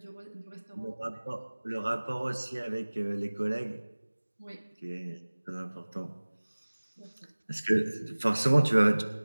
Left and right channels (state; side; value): inverted; both; correlation -1.00